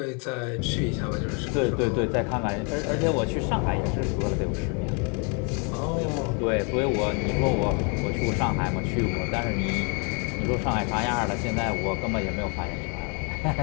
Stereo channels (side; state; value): right; quieter; 35.7 dB